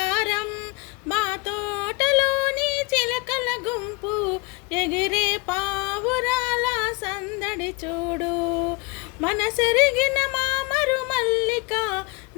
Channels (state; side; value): quieter; right; 26.5 dB